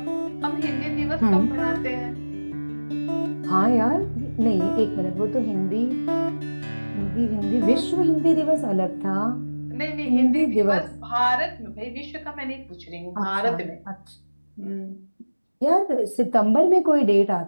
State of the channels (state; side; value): inverted; both; correlation -1.00